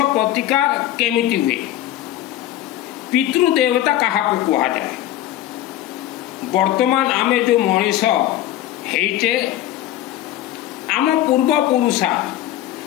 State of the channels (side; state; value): right; quieter; 13.3 dB